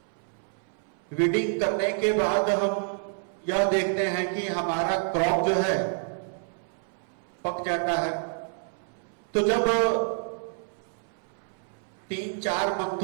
वीडिंग करने के बाद हम यह देखते हैं कि हमारा क्रॉप जो है पक जाता है। तो जब 3-4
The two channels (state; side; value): silent; left; 59 dB below the other